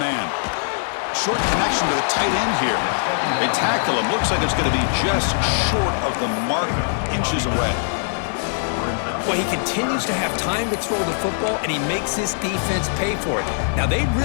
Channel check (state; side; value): silent; right; digital silence